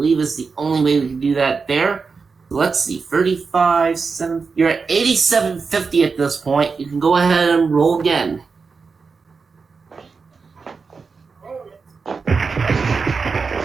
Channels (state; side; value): quieter; left; 4.9 dB